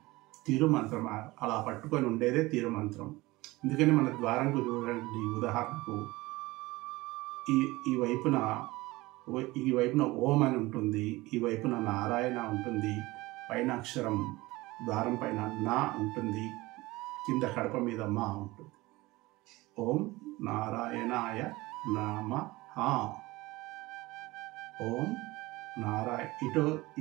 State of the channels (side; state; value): left; quieter; 20.5 dB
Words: తిరుమంత్రం. అలా పట్టుకొని ఉండేదే తిరుమంత్రం. అందుకని మన ద్వారంకు చూడండి, ఉదాహరణకు ఈ వైపున ఓం అని ఉంటుంది, ఈ వైపున నారాయణ ఉంటుంది, పైన అక్షరం ద్వారం పైన నా ఉంటుంది, కింద కడప మీద మా ఉంటుంది. ఓం నారాయణాయ నమః. ఓం ఇటు